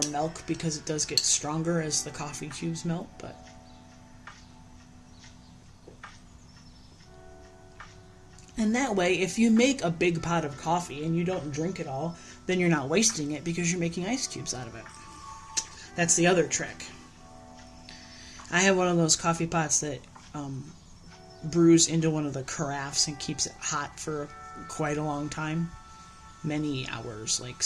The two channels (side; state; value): both; identical; correlation 1.00